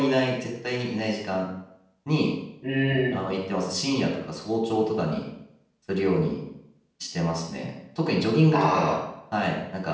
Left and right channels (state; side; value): identical; both; correlation 1.00